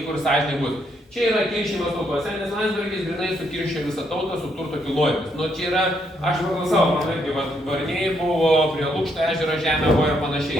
ir sąžininkai bus. Čia yra kiršimas tautose, nes Landsbergis grinai sukiršė visą tautą su turto kilnojimas. Nu čia yra, aš pagal savo, man irgi Varniai buvo, prie Lukšto ežero žemė buvo ir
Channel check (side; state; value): both; normal; correlation 0.74